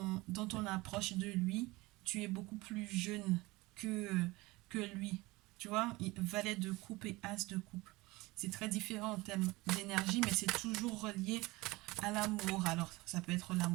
approche de lui, tu es beaucoup plus jeune que lui. Tu vois, valet de coupe et as de coupe. C'est très différent en termes d'énergie, mais c'est toujours relié à l'amour. Alors, ça peut être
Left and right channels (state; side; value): quieter; left; 21.8 dB